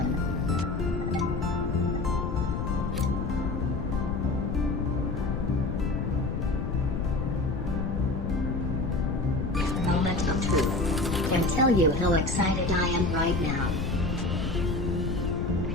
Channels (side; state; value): left; noise; rumble, 2 dB below the sound